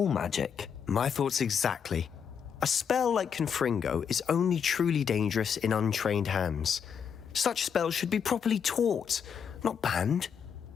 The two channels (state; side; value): quieter; right; 7.3 dB